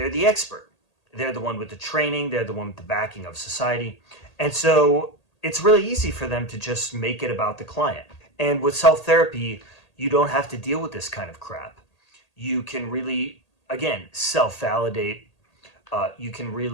the expert. They're the one with the training. They're the one with the backing of society. And so it's really easy for them to just make it about the client. And with self-therapy, you don't have to deal with this kind of crap. You can really, again, self-validate. You can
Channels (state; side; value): late; right; 1.8 ms